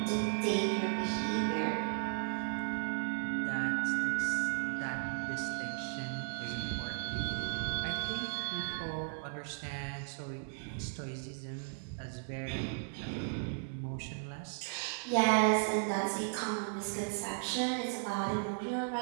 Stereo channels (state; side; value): silent; left; 54 dB below the other